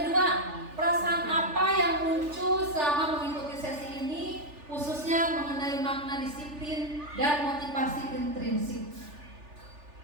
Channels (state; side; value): late; left; 3.4 ms